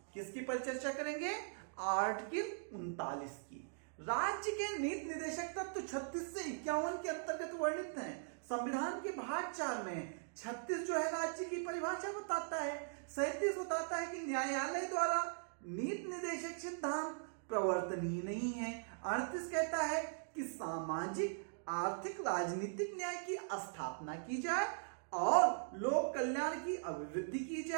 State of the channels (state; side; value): silent; left; digital silence